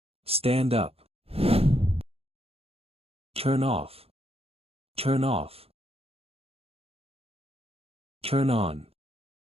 stand up. Turn off, turn off. Turn on,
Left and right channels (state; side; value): late; left; 0.28 ms